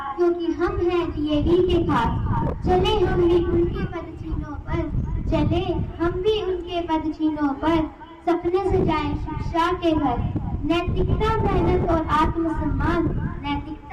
क्योंकि हम हैं डीएवी के खास। चले हम भी उनके पदचिन्हों पर, चले हम भी उनके पदचिन्हों पर, सपने सजाएं शिक्षा के घर। नैतिकता मेहनत और आत्मसम्मान,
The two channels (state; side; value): identical; both; correlation 1.00